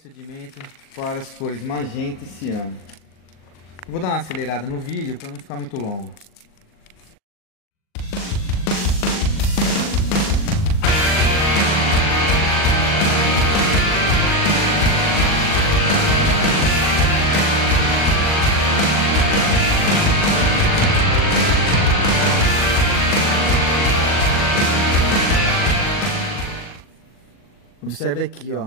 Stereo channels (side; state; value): right; late; 39 ms